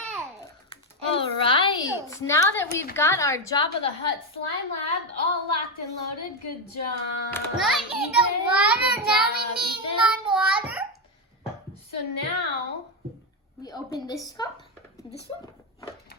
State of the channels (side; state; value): both; normal; correlation 0.08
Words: All right. Now that we've got our Jabba the Hutt slime lab all locked and loaded, good job. Now I need the water. Now we need my water. So now, We open this cup. This one.